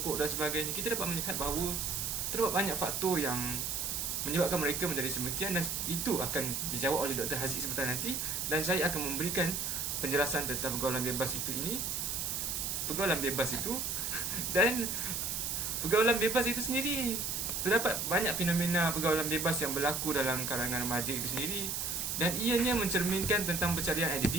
dan sebagainya, kita dapat melihat bahawa terdapat banyak faktor yang menyebabkan mereka menjadi sedemikian, dan itu akan dijawab oleh Dr. Haziq sebentar nanti, dan saya akan memberikan penjelasan tentang pergaulan bebas itu dan pergaulan bebas itu sendiri. Terdapat banyak fenomena pergaulan bebas yang berlaku dalam kalangan remaja itu sendiri, dan ianya mencerminkan tentang pencarian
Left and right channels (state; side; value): noise; right; hiss, 1 dB below the sound